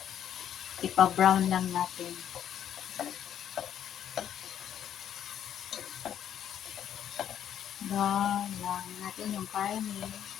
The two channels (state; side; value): quieter; right; 9.9 dB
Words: Ipa-brown lang natin. Brown lang natin yung karne.